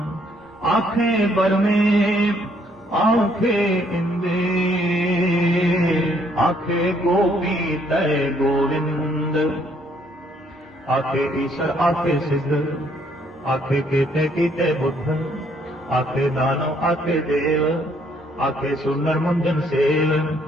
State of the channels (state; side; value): normal; both; correlation 0.67